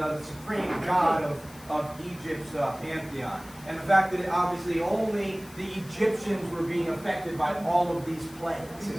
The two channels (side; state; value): left; noise; hiss, 21 dB below the sound